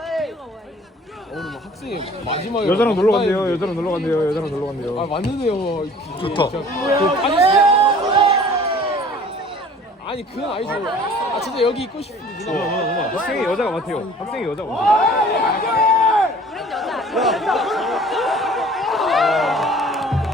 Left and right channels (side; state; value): both; normal; correlation 0.50